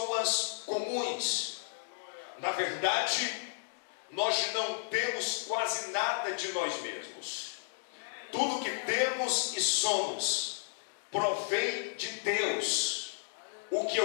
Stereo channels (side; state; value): right; silent; digital silence